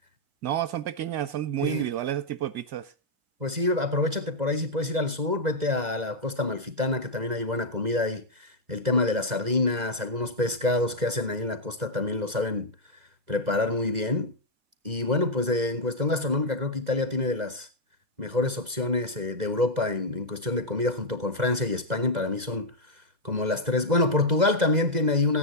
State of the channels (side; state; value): left; late; 2.0 ms